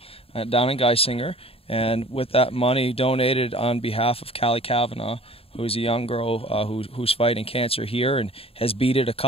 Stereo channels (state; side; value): late; right; 0.28 ms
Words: down in Geisinger. And with that money donated on behalf of Callie Cavanaugh, who's a young girl who's fighting cancer here and has beat it a